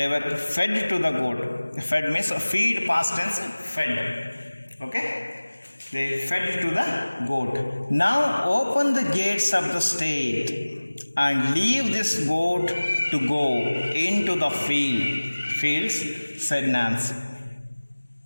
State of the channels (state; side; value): inverted; both; correlation -1.00